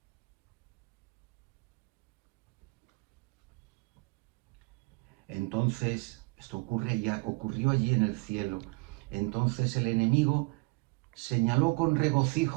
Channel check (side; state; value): left; quieter; 27.3 dB